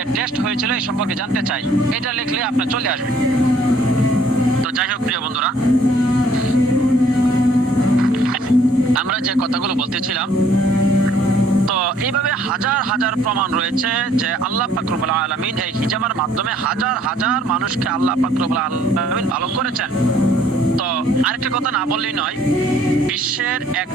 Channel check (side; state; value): both; normal; correlation 0.61